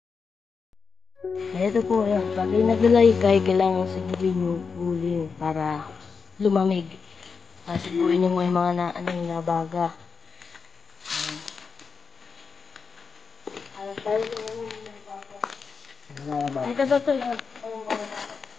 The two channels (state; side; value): quieter; right; 5.4 dB